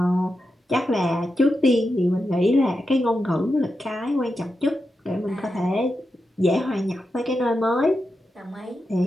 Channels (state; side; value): normal; both; correlation 0.88